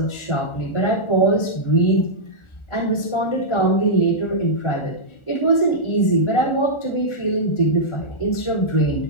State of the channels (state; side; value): late; right; 1.4 ms